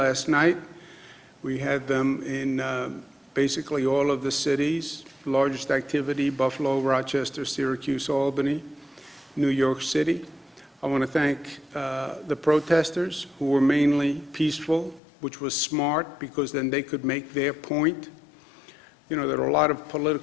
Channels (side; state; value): right; drops out; at 15.0 s